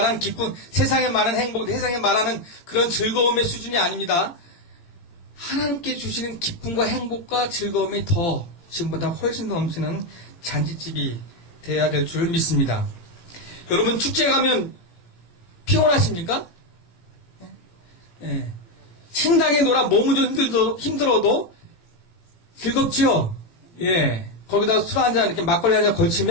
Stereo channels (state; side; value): late; right; 17 ms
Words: 기쁨, 세상에 말하는 행복, 세상에 말하는 그런 즐거움의 수준이 아닙니다. 하나님께 주시는 기쁨과 행복과 즐거움이 더 지금보다 훨씬 더 넘치는 잔치집이 돼야 될 줄 믿습니다. 여러분 축제 가면 피곤하십니까? 예. 신나게 놀아 몸은 좀 힘들어도 즐겁지요? 예. 거기다 술 한잔 이렇게 막걸리 한잔